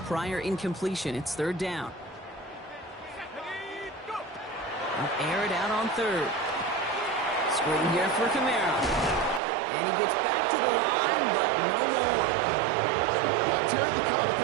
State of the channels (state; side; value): drops out; left; at 9.4 s